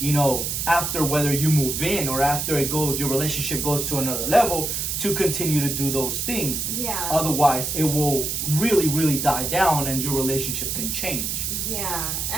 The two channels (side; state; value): right; noise; hiss, 2 dB below the sound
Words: know, after, whether you move in or after your relationship goes to another level, to continue to do those things. Yeah. Otherwise, it will really, really die down and your relationship can change. Yeah,